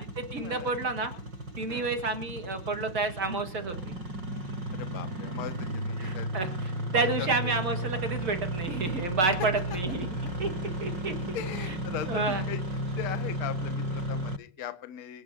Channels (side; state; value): left; late; 5.5 ms